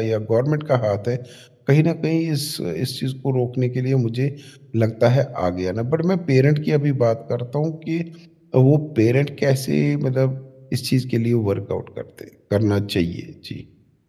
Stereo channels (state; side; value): identical; both; correlation 1.00